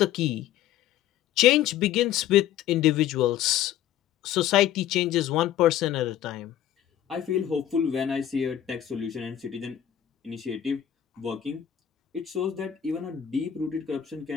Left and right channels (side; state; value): right; quieter; 11.0 dB